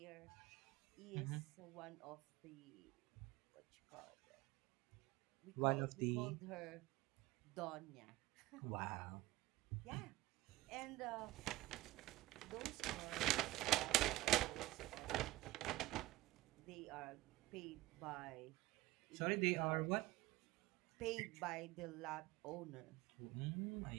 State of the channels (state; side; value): quieter; left; 18.6 dB